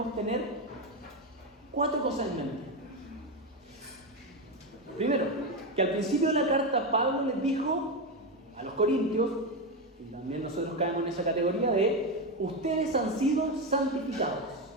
tener 4 cosas en mente. Primero, que al principio de la carta Pablo les dijo a los corintios, y también nosotros caemos en esa categoría de ustedes han sido santificados.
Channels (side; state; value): both; normal; correlation 0.12